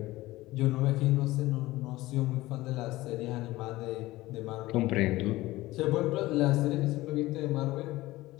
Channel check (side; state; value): right; quieter; 18.2 dB